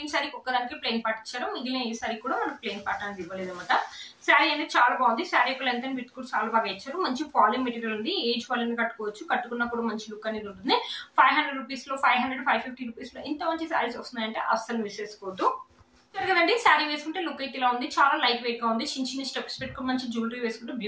శారీకి ఒక్కదానికి ప్లెయిన్ పార్ట్ ఇచ్చారు. మిగిలిన ఈ శారీ కూడా మనకి ప్లెయిన్ పార్ట్ అనేది ఇవ్వలేదు అనమాట. శారీ అనేది చాలా బాగుంది. శారీ యొక్క లెంత్ అండ్ విడ్త్ కూడా చాలా బాగా ఇచ్చారు. మంచి ఫాలింగ్ మెటీరియల్ ఉంది. ఏజ్ వాళ్ళని కట్టుకోవచ్చు. కట్టుకున్నా కూడా మంచి లుక్ అనేది ఉంటుంది. 500 రూపీస్ లో 550 రూపీస్ లో ఇంత మంచి శారీస్ వస్తున్నాయంటే అస్సలు మిస్ చేసుకోవద్దు కదండి. శారీ వేసుకుంటే లుక్ అయితే ఇలా ఉంది. చాలా లైట్ వెయిట్ గా ఉంది. చిన్న స్టెప్స్ పెట్టుకుని మంచి జ్యువెలరీ వేసుకుంటే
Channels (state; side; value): identical; both; correlation 1.00